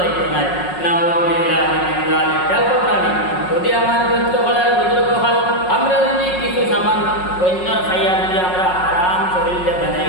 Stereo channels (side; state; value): right; late; 5.5 ms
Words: নাই না যদি আমার দৈত্য হলার বুজুর্গ হল আমরা যদি কিছু সামান অন্যর খাইয়া যদি আমরা হারাম শরীরে বানাই